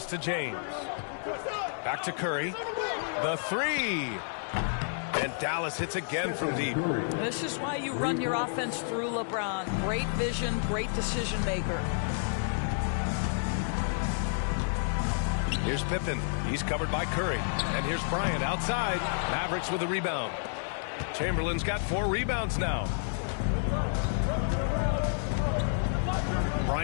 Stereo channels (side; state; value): right; silent; digital silence